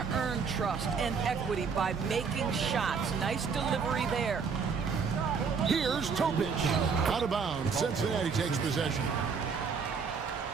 earn trust and equity by making shots. Nice delivery there. Here's Topic. Out of bounds. Cincinnati takes possession.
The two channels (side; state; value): left; quieter; 5.7 dB